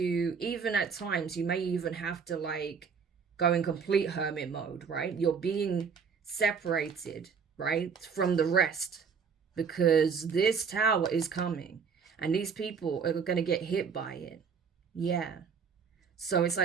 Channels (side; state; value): left; quieter; 6.1 dB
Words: even at times you may even have to like go in complete hermit mode, right? You're being separated, right, from the rest, because this tower is coming and these people are going to get hit by it. Yeah. So it's